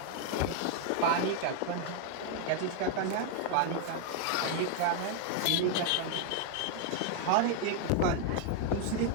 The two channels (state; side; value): different; both; correlation 0.00